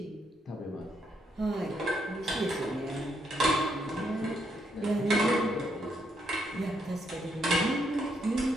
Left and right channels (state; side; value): normal; both; correlation 0.76